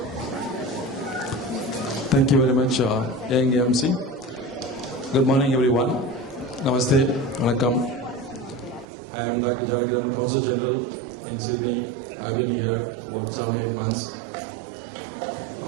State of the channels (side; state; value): left; drops out; at 8.8 s